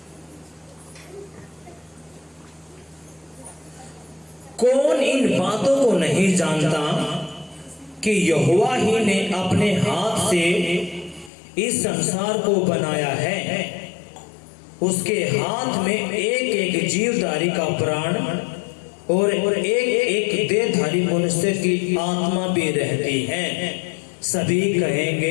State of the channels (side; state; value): right; drops out; at 11.3 s